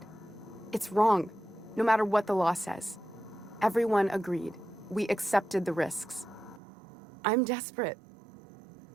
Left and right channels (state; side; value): drops out; left; at 6.6 s